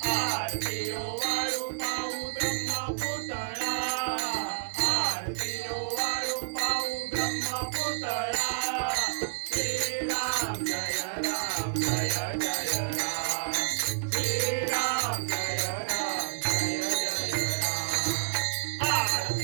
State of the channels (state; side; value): silent; left; digital silence